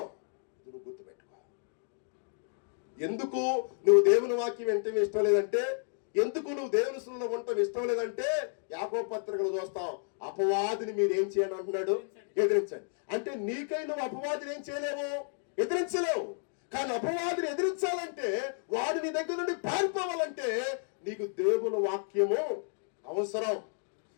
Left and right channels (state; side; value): silent; right; 57 dB below the other